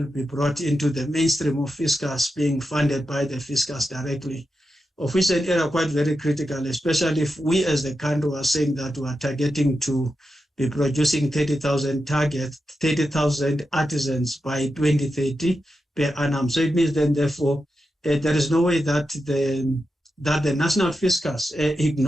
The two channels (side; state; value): both; normal; correlation 0.89